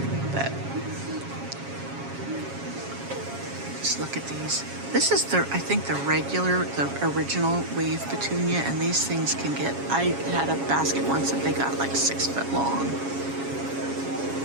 But just look at these. This is I think the original wave petunia, and these things can get, I had a basket once that they got like 6 foot long.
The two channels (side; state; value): left; late; 7.3 ms